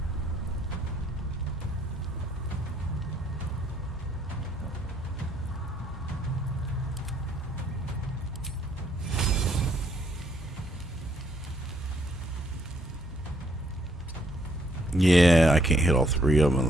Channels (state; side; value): normal; both; correlation 0.69